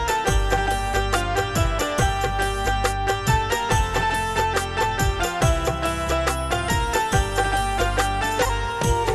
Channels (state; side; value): identical; both; correlation 1.00